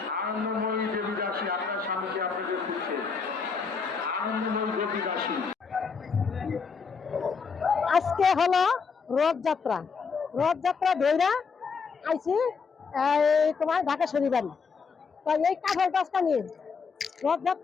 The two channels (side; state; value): right; quieter; 5.4 dB